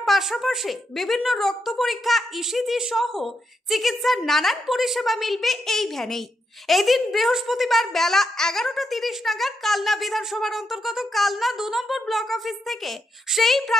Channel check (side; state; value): both; normal; correlation 0.82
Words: পাশাপাশি বিভিন্ন রক্ত পরীক্ষা, ইসিজি সহ চিকিৎসার নানান পরিষেবা মিলবে এই ভ্যানেই। এদিন বৃহস্পতিবার বেলা 11:30 নাগাদ কালনা বিধানসভার অন্তর্গত কালনা 2 নম্বর ব্লক অফিস থেকে সেই